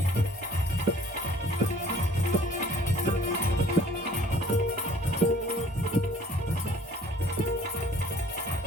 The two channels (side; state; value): both; normal; correlation 0.53